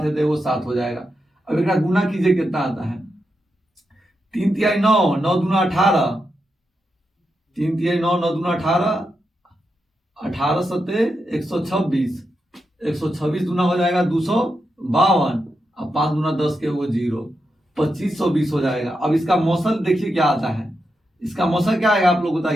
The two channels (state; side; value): normal; both; correlation 0.86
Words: है तो एगो 7 हो जाएगा। अब एक गुना कीजिए, कितना आता है, 3 तिहाई 9, 9 दूना 18, 3 तिहाई 9, 9 दूना 18, 18 सत्ते 126, 126 दूना हो जाएगा 252, अब 5 दूना 10 के वो 0, 2520 हो जाएगा। अब इसका मौसल देखिए क्या आता है, इसका मौसल क्या आएगा आप लोग